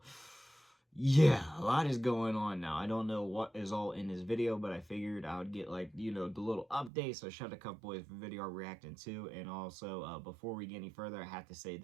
yeah, a lot is going on now. I don't know what is all in this video, but I figured I would get, the little update. So shout out to Cup Boys for video reacting to. And also, before we get any further, I have to say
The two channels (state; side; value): drops out; left; at 6.9 s